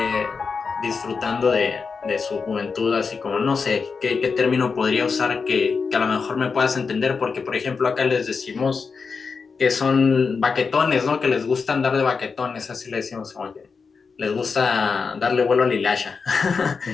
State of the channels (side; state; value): right; quieter; 5.1 dB